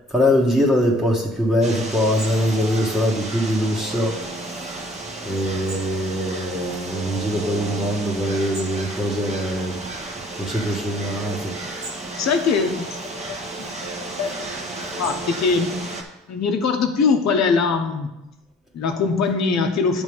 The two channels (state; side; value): normal; both; correlation 0.53